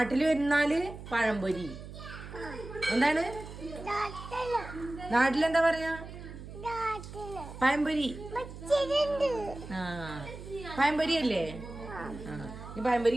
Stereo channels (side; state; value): right; noise; hum, 12 dB below the sound